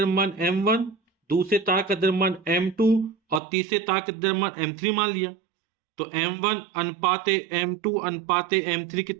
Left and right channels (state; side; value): drops out; left; at 3.4 s